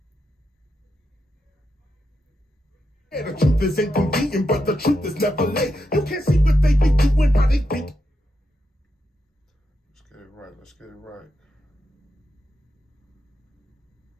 The truth is inconvenient, but the truth is never late. You can't see what they be doing, how they think. Let's get it right. Let's get it right.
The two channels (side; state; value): both; normal; correlation 0.85